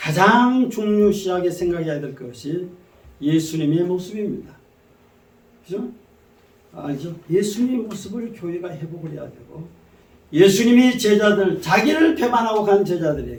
중요시하게 생각해야 될 것이 예수님의 모습입니다. 그죠? 알죠? 예수님의 모습을 교회가 회복을 해야 되고 예수님이 제자들 자기를 배반하고 간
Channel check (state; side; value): identical; both; correlation 1.00